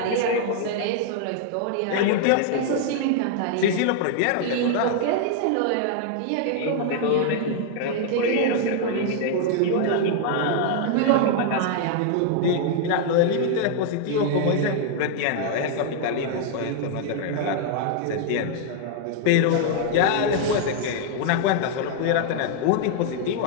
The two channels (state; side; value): different; both; correlation 0.00